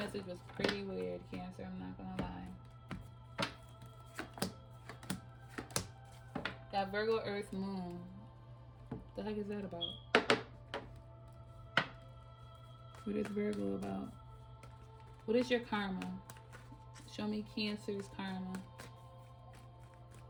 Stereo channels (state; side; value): identical; both; correlation 1.00